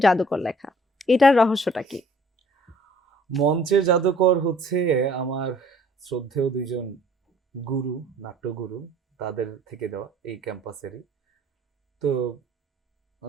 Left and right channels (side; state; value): both; normal; correlation 0.56